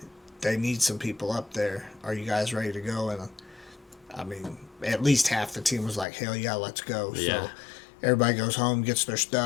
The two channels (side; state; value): right; drops out; at 6.1 s